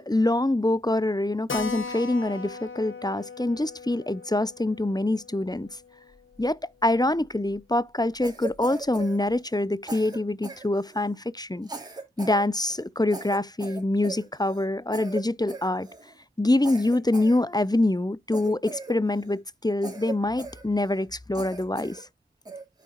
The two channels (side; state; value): both; normal; correlation 0.82